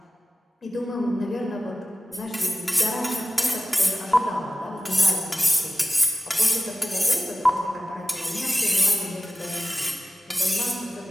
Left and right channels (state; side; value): normal; both; correlation 0.97